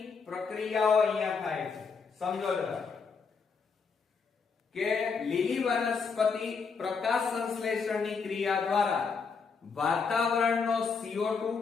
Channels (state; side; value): quieter; right; 5.3 dB